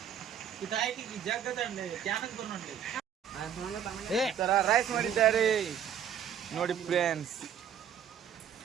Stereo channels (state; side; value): quieter; left; 8.8 dB